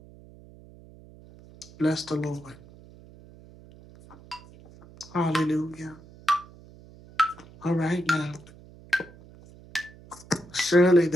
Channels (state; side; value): noise; right; hum, 22 dB below the sound